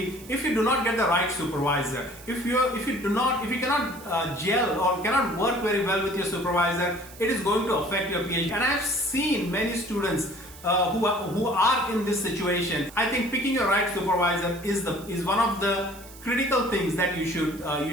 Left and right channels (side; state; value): right; noise; hiss, 19 dB below the sound